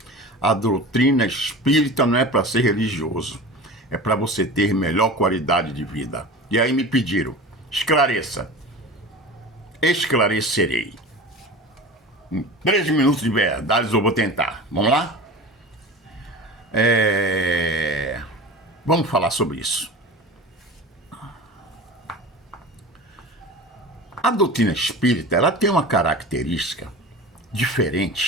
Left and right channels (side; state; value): both; normal; correlation 0.33